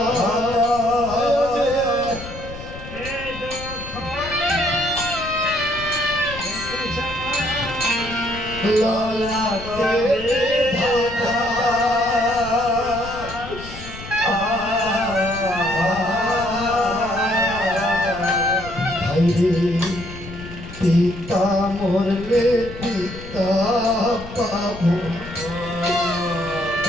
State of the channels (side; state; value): left; noise; rumble, 13 dB below the sound